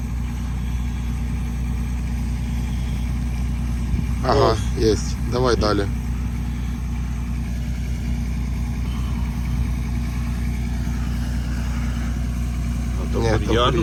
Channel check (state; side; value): identical; both; correlation 1.00